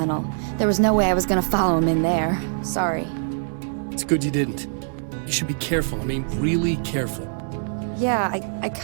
There was no way I was gonna follow him in there. Sorry. It's good you didn't. You should be careful. I mean, really careful. Yeah, I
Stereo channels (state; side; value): silent; left; digital silence